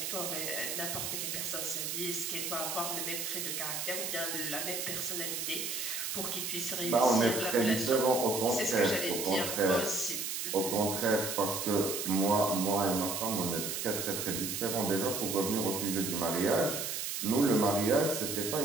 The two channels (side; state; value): right; noise; hiss, 3 dB below the sound